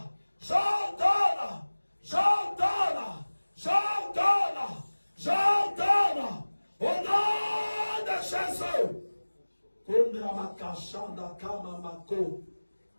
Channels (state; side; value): inverted; both; correlation -1.00